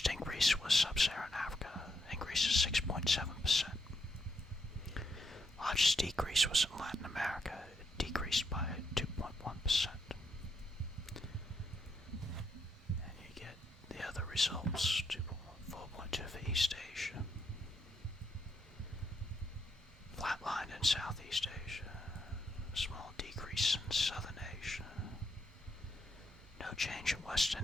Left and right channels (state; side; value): normal; both; correlation 0.78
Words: increase was Sub-Saharan Africa, increase of 6.7%. Largest decrease was in Latin America, it decreased by 2.1%. And you get the other results, 4.2 for East Asia. Flatlined in Southeast Asia, small decrease in Southern Asia, no change in